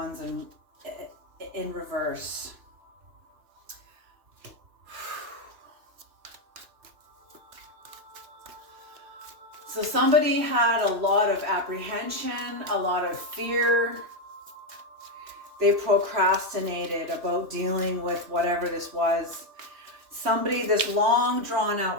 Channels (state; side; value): late; left; 2.9 ms